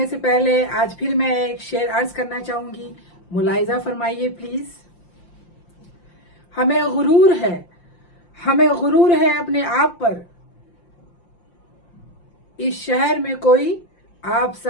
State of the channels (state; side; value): late; right; 5.7 ms